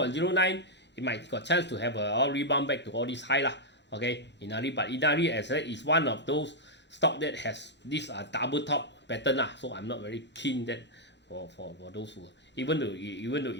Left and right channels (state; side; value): normal; both; correlation -0.05